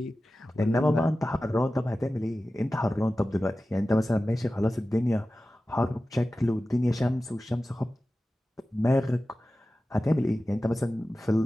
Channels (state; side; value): normal; both; correlation 0.95